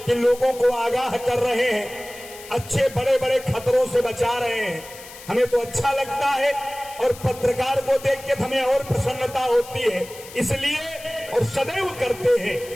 कि लोगों को आगाह कर रहे हैं, अच्छे बड़े बड़े खतरों से बचा रहे हैं। हमें तो अच्छा लगता है और पत्रकार को देख के हमें और प्रसन्नता होती है, इसलिए और सदैव करते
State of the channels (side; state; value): left; noise; hiss, 17 dB below the sound